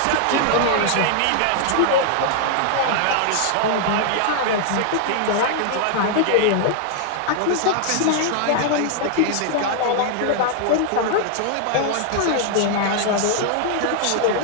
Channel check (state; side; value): different; both; correlation 0.00